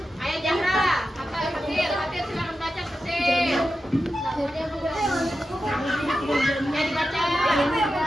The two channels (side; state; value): both; normal; correlation 0.91